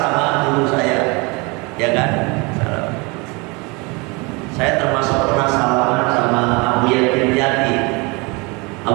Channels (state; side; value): quieter; left; 27.7 dB